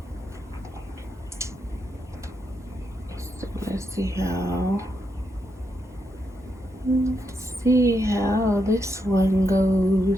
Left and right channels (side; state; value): both; normal; correlation 0.82